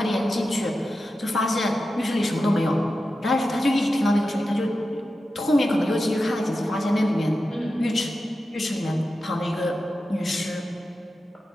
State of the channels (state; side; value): normal; both; correlation 0.92